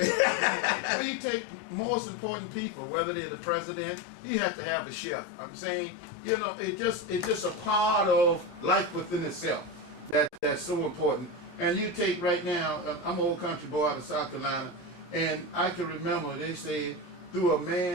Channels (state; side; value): late; right; 17 ms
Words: When you take most important people, whether they're the president, you have to have a chef. I'm saying, it's just a part of life within itself that's so important. And you take right now, I'm an old country boy out of South Carolina, and I can remember they said, to a